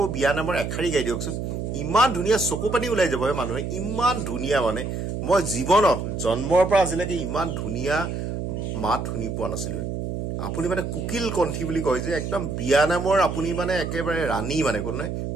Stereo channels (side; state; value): right; noise; hum, 4 dB below the sound